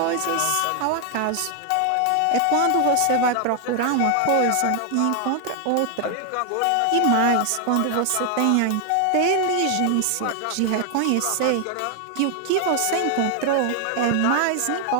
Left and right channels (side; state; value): both; different; correlation 0.00